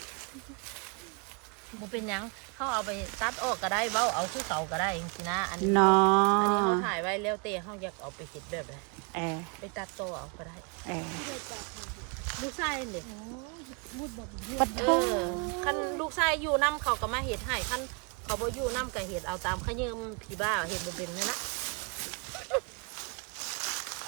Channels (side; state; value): left; quieter; 34.2 dB